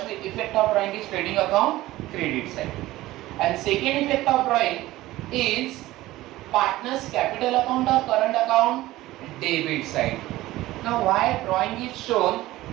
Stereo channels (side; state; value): left; quieter; 16.9 dB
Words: effect of drawing is trading account credit side, and second effect of drawing is partners capital account or current account debit side. Now why drawing is shown